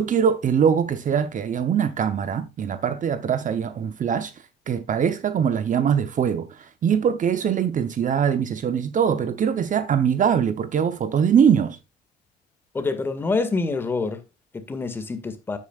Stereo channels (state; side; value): quieter; left; 6.2 dB